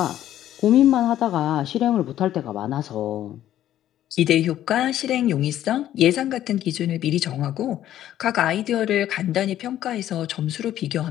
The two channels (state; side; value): quieter; right; 12.2 dB